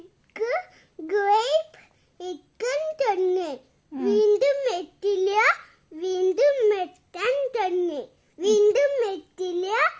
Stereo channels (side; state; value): both; identical; correlation 1.00